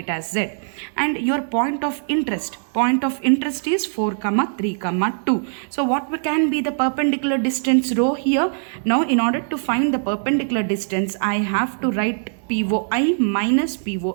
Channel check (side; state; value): left; silent; 65 dB below the other